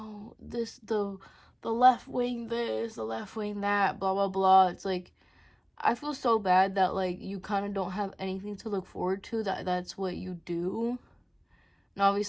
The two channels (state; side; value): identical; both; correlation 1.00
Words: the left wing this, the left wing that, blah, blah, blah. It's like, I feel so bad that, like, you kind of don't have anything to look forward to, that's what you do. And